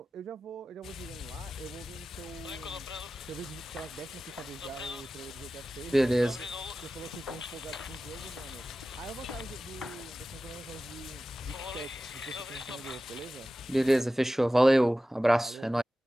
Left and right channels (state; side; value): normal; both; correlation 0.95